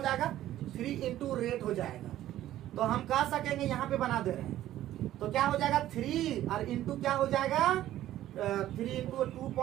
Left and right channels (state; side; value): quieter; left; 13.4 dB